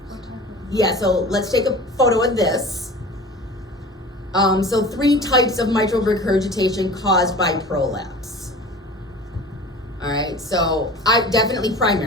Yeah, so let's take a photo of this. So 3 types of mitral regurgitation caused by prolapse. All right, so I definitely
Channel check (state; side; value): normal; both; correlation 0.39